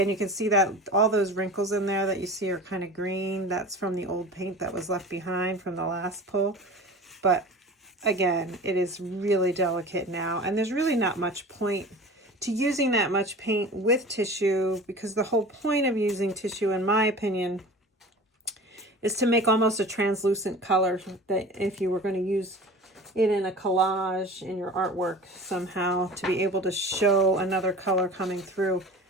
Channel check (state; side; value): normal; both; correlation 0.38